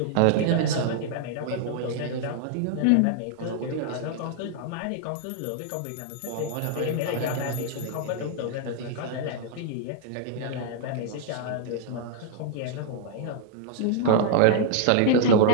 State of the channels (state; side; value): different; both; correlation -0.01